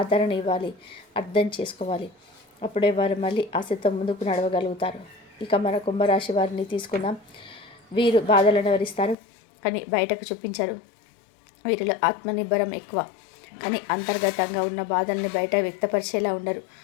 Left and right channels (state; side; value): drops out; right; at 9.2 s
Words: ఇవ్వాలి, అర్థం చేసుకోవాలి. అప్పుడే వారు మళ్ళీ ఆశతో ముందుకు నడవగలుగుతారు. ఇక మన కుంభరాశి వారిని తీసుకుందాం. వీరు బాధలను వివరిస్తారు కానీ బయటకు చూపించరు. వీరిలో ఆత్మనిర్భరం ఎక్కువ కానీ అంతర్గతంగా ఉన్న బాధల్ని బయట వ్యక్తపరిచేలా ఉండరు.